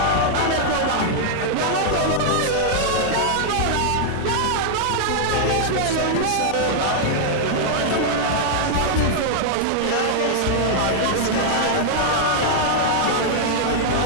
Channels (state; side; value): different; both; correlation -0.01